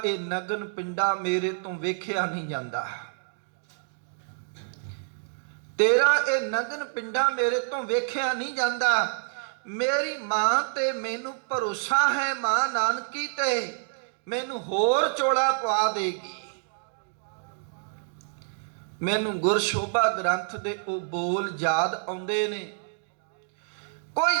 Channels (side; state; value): left; silent; digital silence